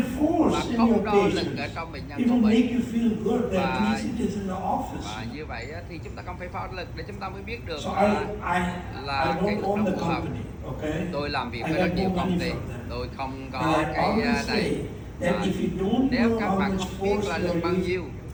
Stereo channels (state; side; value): identical; both; correlation 1.00